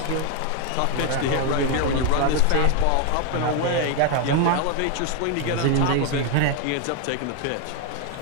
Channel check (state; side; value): different; both; correlation 0.01